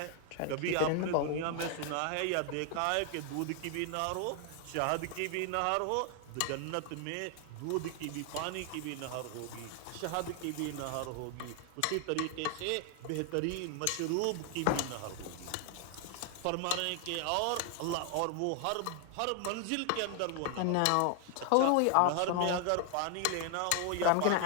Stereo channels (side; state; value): both; different; correlation 0.00